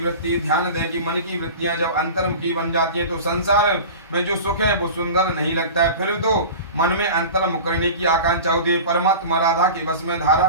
ध्यान दें कि मन की वृत्तियां जब अंतर्मुखी बन जाती हैं तो संसार में जो सुख है वो सुंदर नहीं लगता है, फिर तो मन में अंतर्मुख करने की आकांक्षा होती है। परमात्मा राधा के वश में,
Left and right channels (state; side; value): inverted; both; correlation -0.34